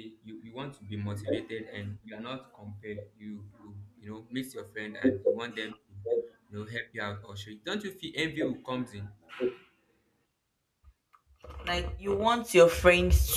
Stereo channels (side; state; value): both; identical; correlation 1.00